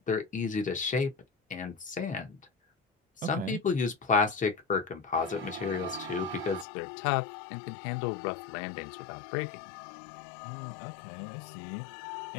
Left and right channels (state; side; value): drops out; right; at 6.7 s